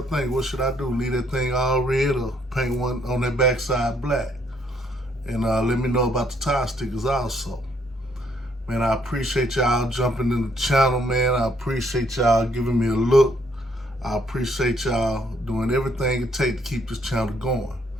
think. What should I do? Leave that thing all red or paint one on that backside black? And let me know about the tire stickers also. Man, I appreciate y'all jumping in the channel, man. I appreciate y'all giving me a look. I appreciate y'all doing everything it takes to keep this channel going.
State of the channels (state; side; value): normal; both; correlation 0.69